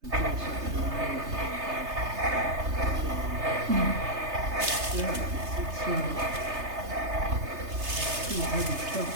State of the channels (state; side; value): late; left; 3.3 ms